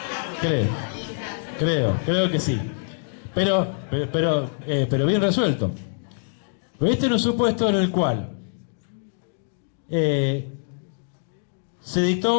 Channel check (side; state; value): right; silent; digital silence